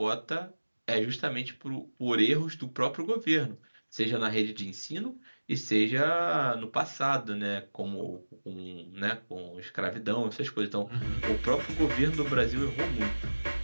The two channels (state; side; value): inverted; both; correlation -1.00